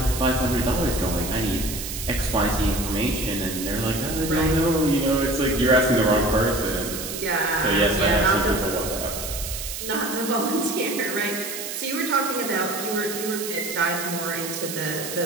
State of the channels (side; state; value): right; noise; hiss, 7 dB below the sound